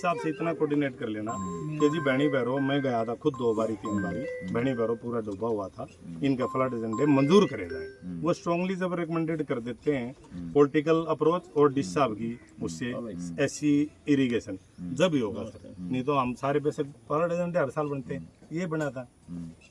से इतना कोऑर्डिनेट कर लेना कि जी बहनी भैरो, मैं गया था खुद 2 बारी 3 बारी, बहनी भैरो पूरा डूबा हुआ था, इनका फ्लड एजेंडे मंजूर करे जाए। वो स्ट्रांगली जब रिकमेंडेड कर देते हैं पॉलिटिकल अप्रोच और डिश साहब की उससे एससी इरीगेशन जब ही होगा सर, नहीं तो हम सारे पैसे फ्लड एजेंडे हर साल बनते हैं, ये बना था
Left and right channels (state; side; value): identical; both; correlation 1.00